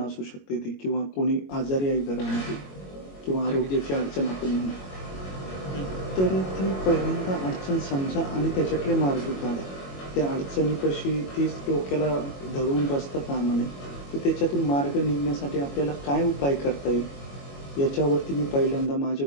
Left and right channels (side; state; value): right; late; 21 ms